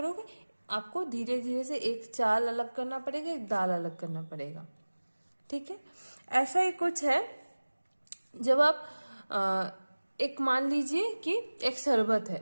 आपको धीरे धीरे से एक चाल अलग करना पड़ेगा, एक दाल अलग करना पड़ेगा। ठीक है, ऐसा ही कुछ है। जब आप एक मान लीजिए कि एक शरबत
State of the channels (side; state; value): both; inverted; correlation -1.00